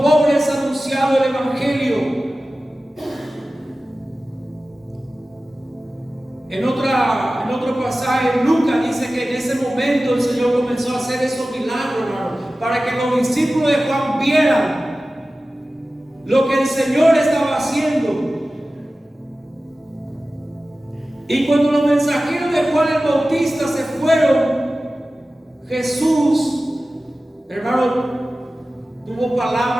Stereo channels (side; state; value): both; normal; correlation 0.96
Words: anunciado el Evangelio. En otro pasaje, Lucas dice que en ese momento el Señor comenzó a hacer esos milagros, hermano, para que los discípulos de Juan vieran lo que el Señor estaba haciendo. Y cuando los mensajeros de Juan el Bautista se fueron, Jesús, hermano, tuvo